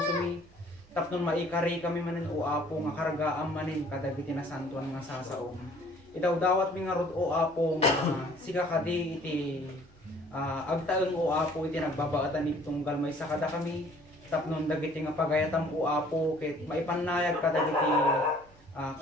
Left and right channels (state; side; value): noise; right; hum, 27 dB below the sound